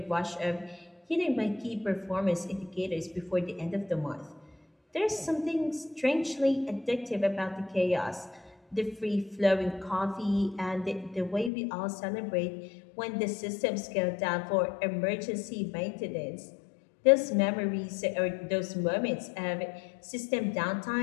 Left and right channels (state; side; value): drops out; right; at 11.5 s